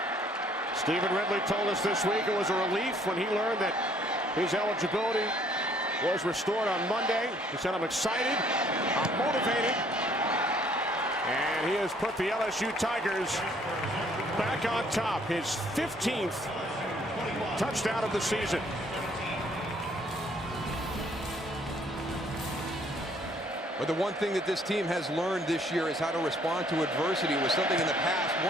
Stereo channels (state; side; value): normal; both; correlation 0.62